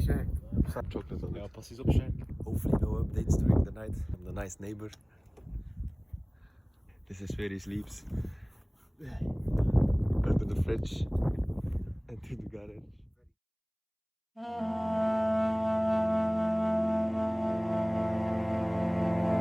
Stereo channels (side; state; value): both; identical; correlation 1.00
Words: chocolate on it. Ja, passies op Shank. Hopefully no updates during the night. I'm the nice neighbor. This is where he sleeps. Under the fridge and to the garage.